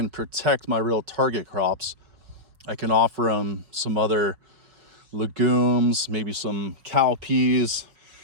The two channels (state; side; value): late; left; 5.5 ms